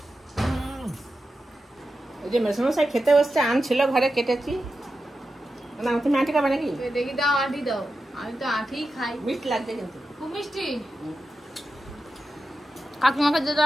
ওই যে মেসমশাই খেতে বসছে, আম ছিল ঘরে, কেটেছি। না তুমি আঁটি খাবে নাকি? দেখি দাও, আঁটি দাও। আমি তো আঁটিই খাই। মিট লাগছে কিন্তু। খুব মিষ্টি। কাকিমাকে দিয়ে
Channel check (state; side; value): normal; both; correlation 0.90